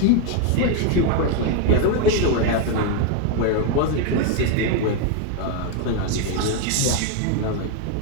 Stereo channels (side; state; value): both; different; correlation 0.01